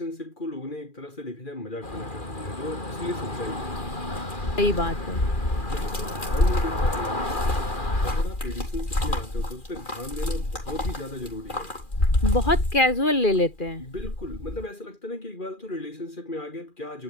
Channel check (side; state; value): right; late; 2.4 ms